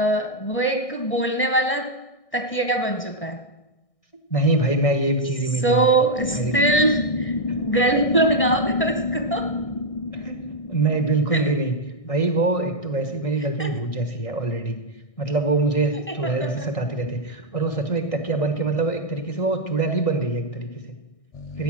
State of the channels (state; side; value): late; right; 1.6 ms